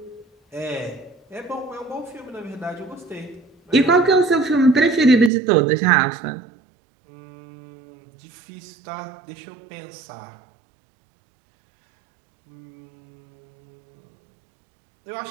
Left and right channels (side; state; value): left; drops out; at 5.3 s